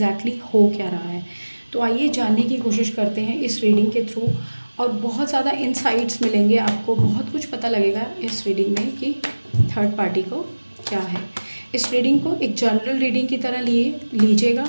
हो क्या रहा है? तो आइए जानने की कोशिश करते हैं इस रीडिंग के थ्रू, और बहुत ज़्यादा इंसाइट्स मिलेंगे आपको, बहुत कुछ पता लगेगा इस रीडिंग में कि थर्ड पार्टी को क्या है। इस रीडिंग को एक जनरल रीडिंग की तरह लीजिएगा।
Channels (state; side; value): inverted; both; correlation -1.00